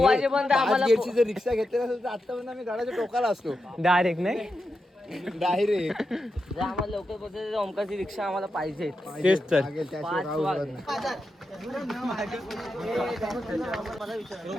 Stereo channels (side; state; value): both; normal; correlation 0.88